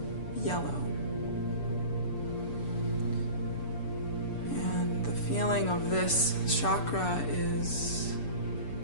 yellow. And the feeling of this chakra is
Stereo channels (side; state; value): right; late; 6.9 ms